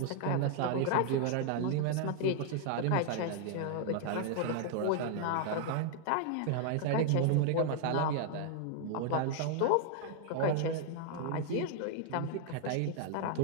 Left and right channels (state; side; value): different; both; correlation 0.00